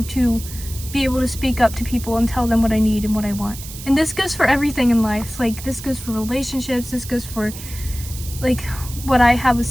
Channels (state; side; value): noise; right; hiss, 13 dB below the sound